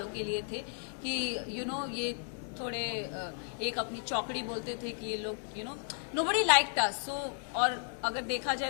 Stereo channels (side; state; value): right; silent; 55 dB below the other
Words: के लिए थे कि ये थोड़े एक अपनी चौकड़ी बोलते थे कि ये लोग नोबडी लाइक्ड अस सो और अगर देखा जाए